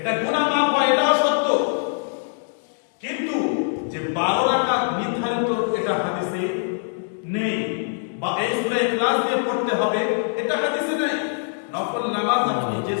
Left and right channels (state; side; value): silent; right; digital silence